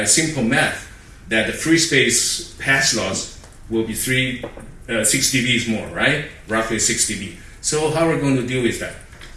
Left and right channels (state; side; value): identical; both; correlation 1.00